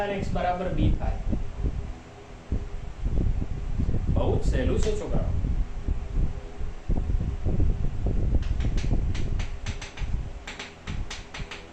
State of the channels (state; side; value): identical; both; correlation 1.00